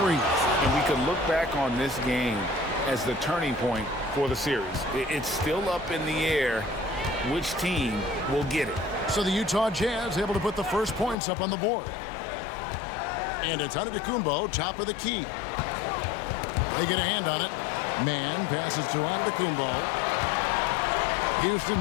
And we can look back on this game as the turning point for the series. It's still up in the air which team will get it. So the Utah Jazz able to put the first points up on the board. And it's Antetokounmpo, top of the key. They get a hand on it. Mann passes to Antetokounmpo. Houston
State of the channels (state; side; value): drops out; right; at 11.2 s